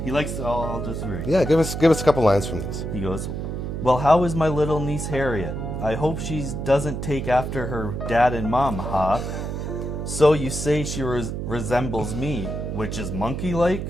I'll just read. Yeah, give us a couple lines from these. He goes, "Well, how is my little niece Harriet? I hope she doesn't take after her dad and mom, huh? So you say she resembles me, which is monkey-like?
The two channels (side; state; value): right; noise; hum, 4 dB below the sound